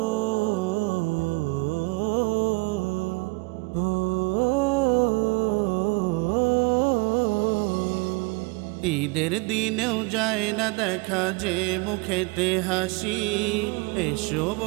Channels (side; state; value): left; quieter; 28.2 dB